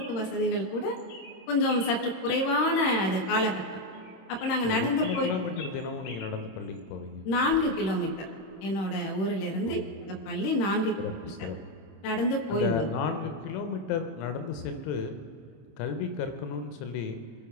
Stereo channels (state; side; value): late; right; 26 ms